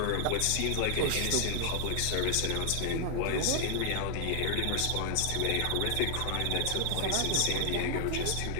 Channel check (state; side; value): different; both; correlation 0.00